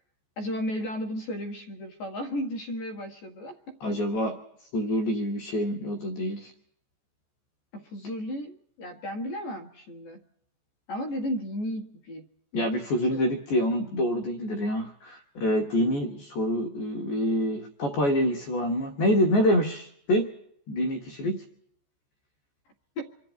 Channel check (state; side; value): late; right; 14 ms